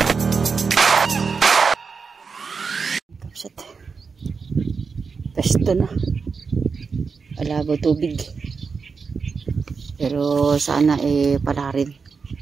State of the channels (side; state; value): left; quieter; 5.2 dB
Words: Kapsat. Pesto na. Alabo tubig. Pero sana pala rin.